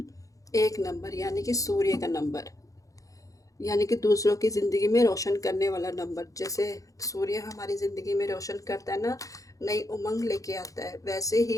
एक नंबर यानी कि सूर्य का नंबर, यानी कि दूसरों की ज़िंदगी में रोशन करने वाला नंबर। जैसे सूर्य हमारी ज़िंदगी में रोशन करता है ना, नई उमंग लेके आता है, वैसे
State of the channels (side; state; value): right; late; 0.16 ms